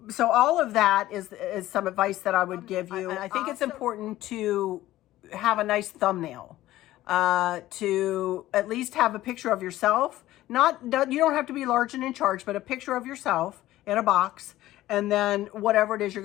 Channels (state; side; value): quieter; right; 15.4 dB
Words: all of that is some advice that I would give you. I think it's important to have a nice thumbnail, to at least have a picture of yourself, You don't have to be large and in charge, but a picture of yourself in a box, and then whatever it is you're